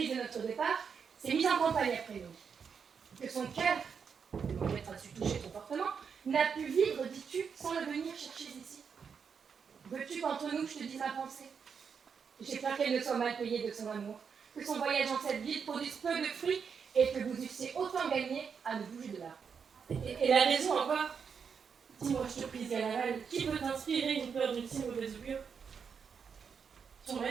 de notre départ, s'est mise en campagne après nous. Que son cœur, mon maître a su toucher ton portement, n'a pu vivre, dis-tu, sans le venir chercher ici. Veux-tu qu'entre nous je te dise ma pensée? J'ai peur qu'elle ne soit mal payée de son amour, que son voyage dans cette ville produise peu de fruits et que vous eussiez autant gagné à ne bouger de là. Et la raison encore? Dis-moi, je te prie, Galaval, qui peut t'inspirer une peur d'une si mauvaise augure? Ton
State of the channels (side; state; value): left; quieter; 6.4 dB